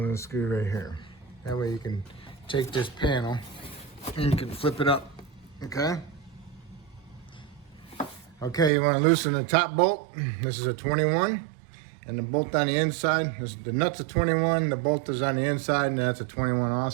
screw right here. That way you can take this panel and you can flip it up. Okay. Okay, you want to loosen the top bolt. This is a 21, and the bolt on the inside, the nut's a 21, the bolt is on the inside, and that's a 21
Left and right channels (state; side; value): drops out; left; at 8.7 s